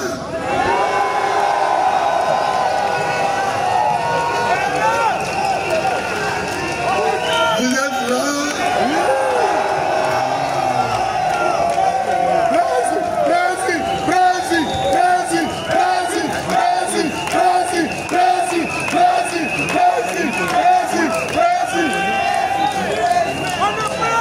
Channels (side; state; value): both; identical; correlation 1.00